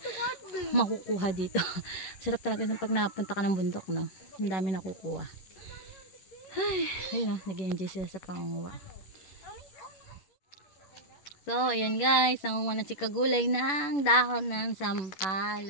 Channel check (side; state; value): right; late; 11 ms